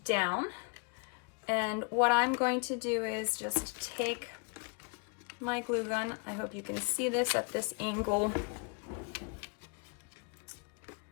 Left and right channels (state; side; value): quieter; right; 33.4 dB